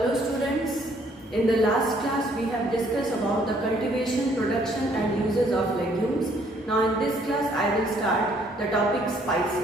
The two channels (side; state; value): both; normal; correlation 0.64